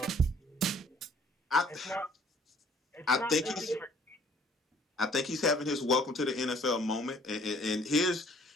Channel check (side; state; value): both; normal; correlation 0.58